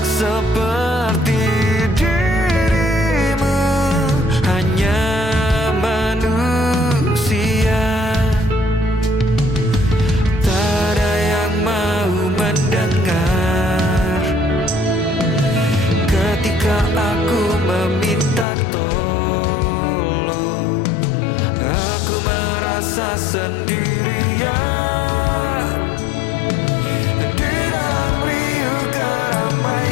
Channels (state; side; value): drops out; right; at 18.4 s